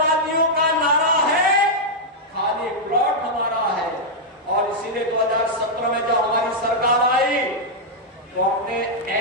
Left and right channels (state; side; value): normal; both; correlation -0.04